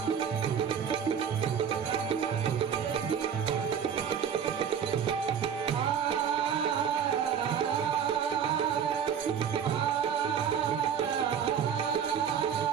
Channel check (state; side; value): quieter; left; 8.0 dB